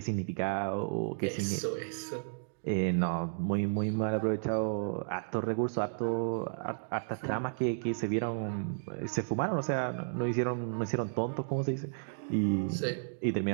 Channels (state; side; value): silent; left; digital silence